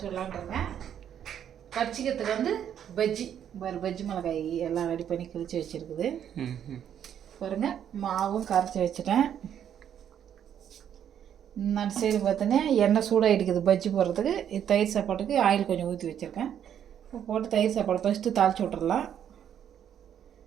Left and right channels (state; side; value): quieter; left; 9.4 dB